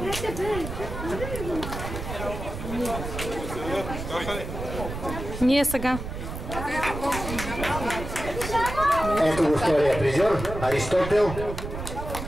Ние сега. Ето го втория призьор, Аристотел.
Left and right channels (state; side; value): noise; right; rumble, 7 dB below the sound